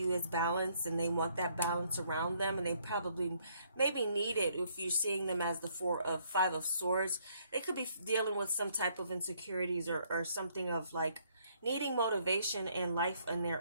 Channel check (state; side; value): inverted; both; correlation -0.67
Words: as balanced, and they want that balance around them, and they probably maybe need it. If you're seeing them as the Five of Swords, they could be dealing with some type of insecurities, or something of like needing motivation in life in